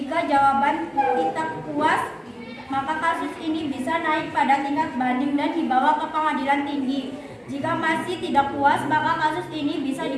jawaban tidak puas, maka kasus ini bisa naik pada tingkat banding dan dibawa ke pengadilan tinggi. Jika masih tidak puas, maka kasus ini bisa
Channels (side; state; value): both; identical; correlation 1.00